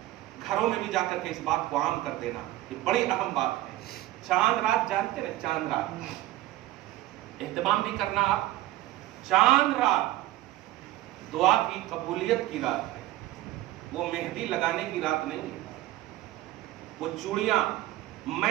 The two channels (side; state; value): left; quieter; 16.1 dB